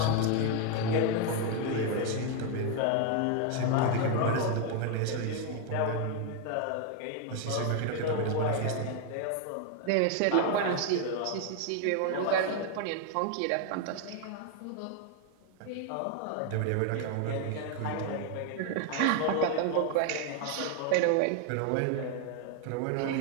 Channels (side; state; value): both; different; correlation 0.01